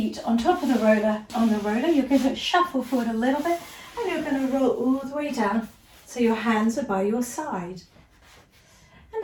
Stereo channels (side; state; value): both; identical; correlation 1.00